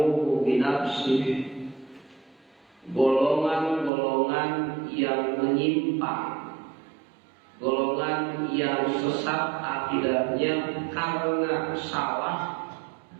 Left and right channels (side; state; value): left; drops out; at 3.9 s